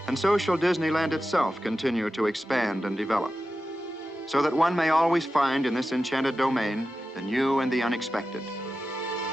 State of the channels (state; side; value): normal; both; correlation 0.92